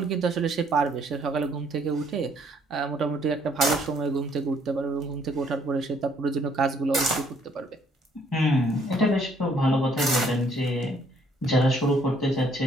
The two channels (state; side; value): normal; both; correlation 0.65